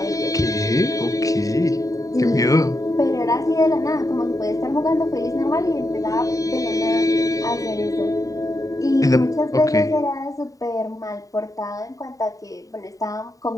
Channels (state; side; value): late; right; 0.16 ms